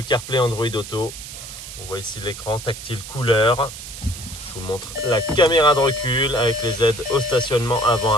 CarPlay, Android Auto. On voit ici l'écran tactile couleur. Je vous montre la caméra de recul avec les aides au stationnement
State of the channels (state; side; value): noise; right; hiss, 12 dB below the sound